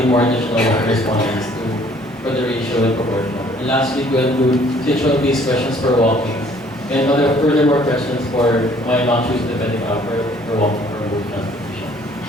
more additional respondents for the ratio and proportion. And lastly, to include situational-based questions for walking, and furthermore questions for why not choose the pedicab for walking or both transportation.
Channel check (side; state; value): both; normal; correlation 0.59